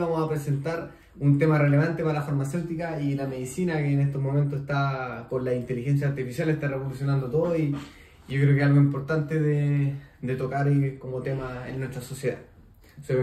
a presentar un tema relevante para la farmacéutica y la medicina, que en estos momentos está con la inteligencia artificial, está revolucionando todo, y yo creo que es algo importante de tocar como tema en nuestra sociedad. Soy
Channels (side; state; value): both; identical; correlation 1.00